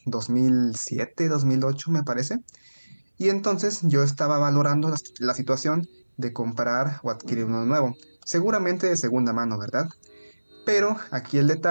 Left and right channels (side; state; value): both; inverted; correlation -1.00